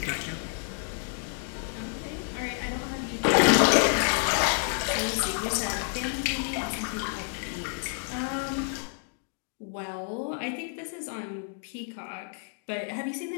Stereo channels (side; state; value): right; silent; 58 dB below the other